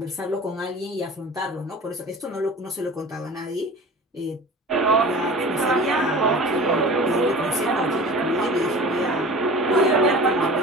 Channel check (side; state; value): both; normal; correlation 0.38